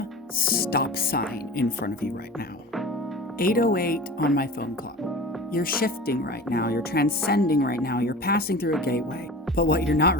stop sign in front of you right now. 8:08 on my phone clock. You're shifting right now, you're transcending right now, you're passing through a gateway. But what you're not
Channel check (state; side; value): normal; both; correlation 0.36